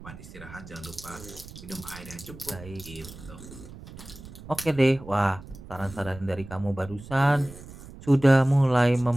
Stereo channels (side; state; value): right; noise; rumble, 16 dB below the sound